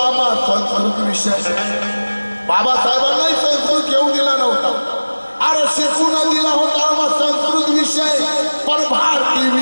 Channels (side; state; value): both; inverted; correlation -1.00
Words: आम्हा संस्कृत विषय बाबासाहेबांनाही संस्कृत घेऊ दिला नव्हता अरे शिकून दिला होता आम्हा संस्कृत विषय पण भारतीय